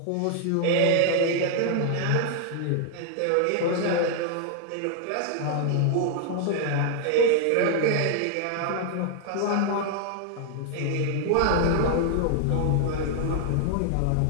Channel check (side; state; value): both; different; correlation -0.01